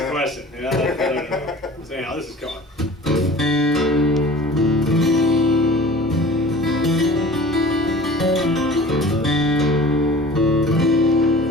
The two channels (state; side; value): normal; both; correlation 0.42